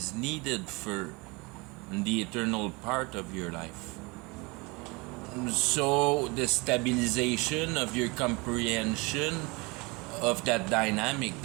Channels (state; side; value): quieter; left; 26.4 dB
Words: needed for the eternal part of your life. So the stabilization of your comprehension of that dynamic